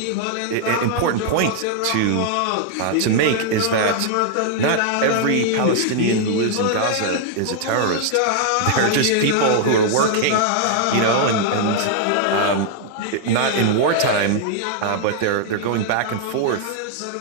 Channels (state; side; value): different; both; correlation 0.00